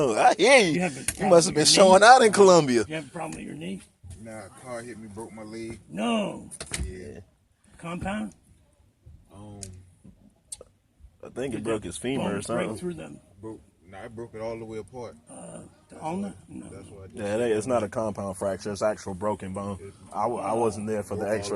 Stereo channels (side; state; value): both; identical; correlation 1.00